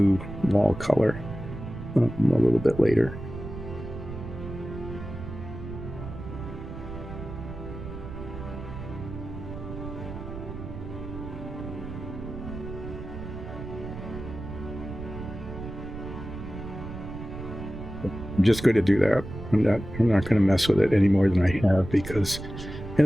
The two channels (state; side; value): noise; right; rumble, 9 dB below the sound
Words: wall color a little bit later. I'm just going to do that. I'm not going to mess with it any more than I have, because